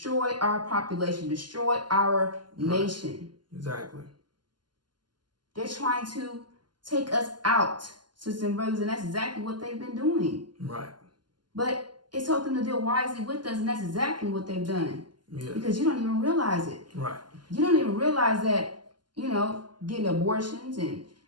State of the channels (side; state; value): left; late; 0.71 ms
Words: our population, destroy our nation. Exactly. They're trying to take us out, sisters and brothers, and that's exactly what they've been doing. Right. But it's told them to deal wisely with us, and that's exactly what they've done. Yeah. Because you don't even realize it. Right. You don't even realize that, getting abortions and